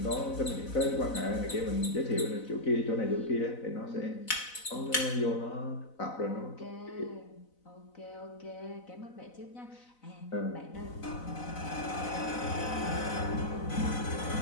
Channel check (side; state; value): right; late; 4.0 ms